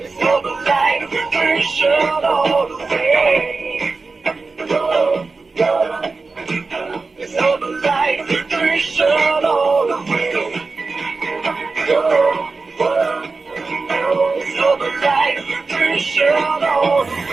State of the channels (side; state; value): left; quieter; 4.0 dB